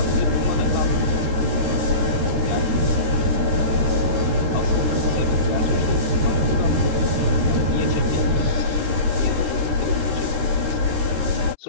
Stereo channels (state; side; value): late; left; 13 ms